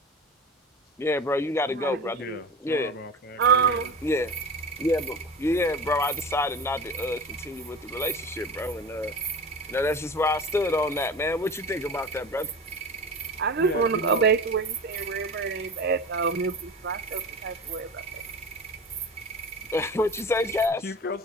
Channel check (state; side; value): normal; both; correlation 0.33